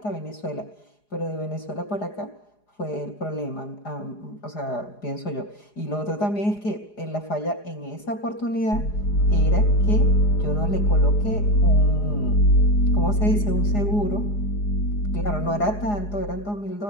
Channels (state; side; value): late; right; 4.8 ms